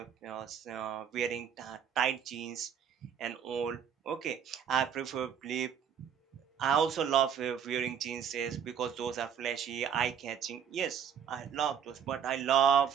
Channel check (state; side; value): quieter; left; 8.0 dB